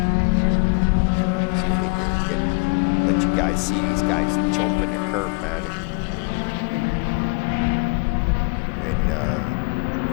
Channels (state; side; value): quieter; right; 34.0 dB